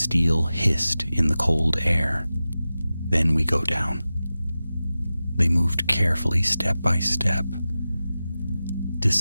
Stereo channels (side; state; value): both; inverted; correlation -0.95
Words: hissed in the cold air. "Then we go down." They moved carefully, step by step,